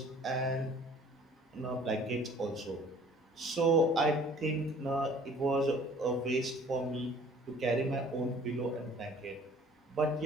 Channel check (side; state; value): both; normal; correlation 0.53